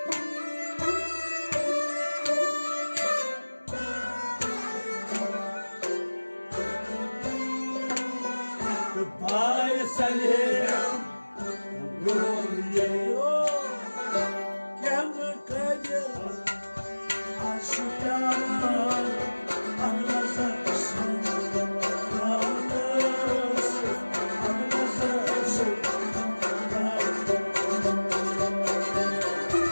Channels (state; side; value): inverted; both; correlation -1.00